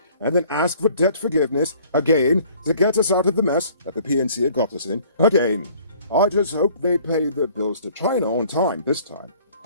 and then ask for debt forgiveness again to get us out of the mess that the PNC had got us in again. I just hope they pay their bills to China on time this time.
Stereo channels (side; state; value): both; inverted; correlation -0.55